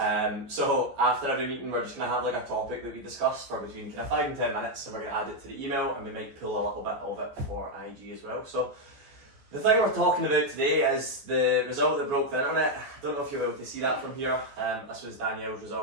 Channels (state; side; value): late; left; 14 ms